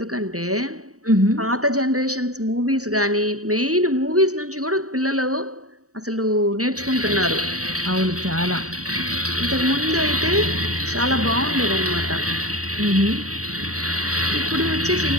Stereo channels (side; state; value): left; late; 0.66 ms